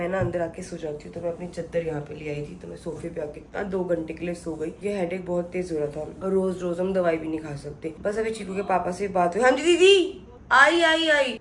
ना अंदर आके सो जाती हूँ। तो मैं अपनी चद्दर यहाँ पे ले आई थी, तो मैं सोफे पे आके 2 घंटे के लिए सो गई। ये हेडेक बहुत तेज हो रहा था और रोज रोज हम दवाई भी नहीं खा सकते। बस अभी चीकू के पापा से बात हुई। हाँ जी दीदी आई।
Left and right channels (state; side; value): identical; both; correlation 1.00